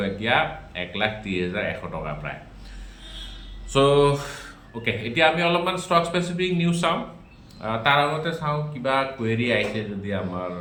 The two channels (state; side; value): identical; both; correlation 1.00